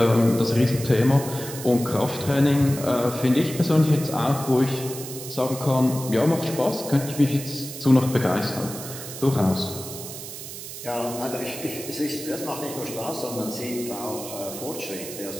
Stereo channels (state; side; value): noise; right; hiss, 10 dB below the sound